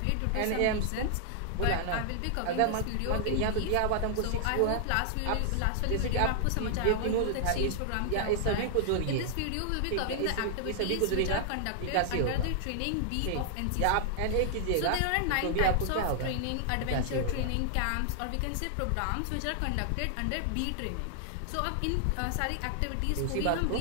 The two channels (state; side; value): different; both; correlation 0.00